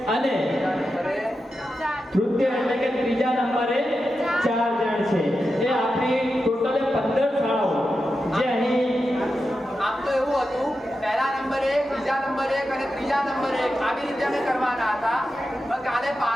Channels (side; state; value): both; normal; correlation 0.90